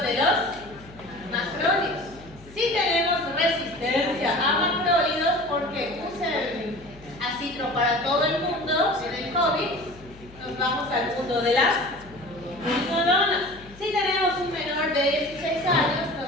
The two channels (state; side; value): noise; left; hum, 21 dB below the sound